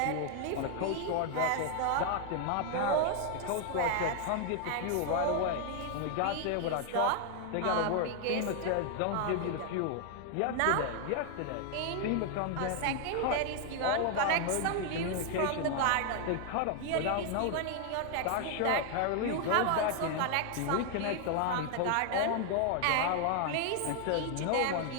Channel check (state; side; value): different; both; correlation 0.00